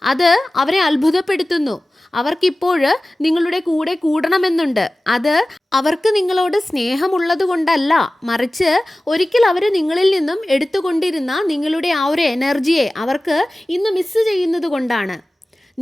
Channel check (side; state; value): both; normal; correlation 0.97